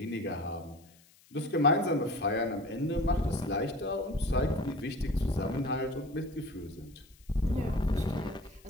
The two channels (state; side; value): noise; left; hiss, 28 dB below the sound